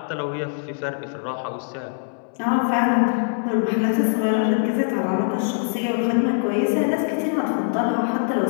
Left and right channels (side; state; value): right; silent; 64 dB below the other